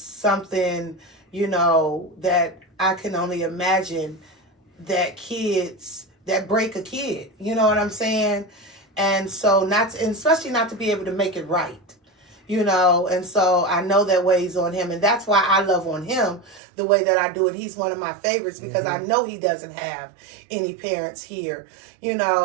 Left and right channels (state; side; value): drops out; left; at 16.6 s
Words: you know, that I can only imagine that kids, that break a kid. You know what I'm saying? And so and especially not to be able to make it right. You know, and so I know that weighs on him, and that's why I love on him the way that I do it. He's one of my favorites because I know he doesn't have any parents here. You